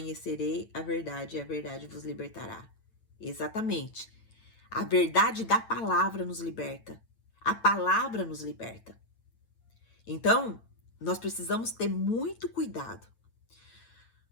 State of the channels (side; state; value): right; late; 9.0 ms